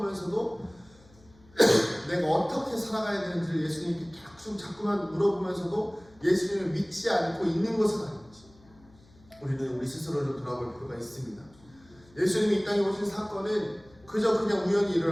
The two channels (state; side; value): noise; left; hum, 27 dB below the sound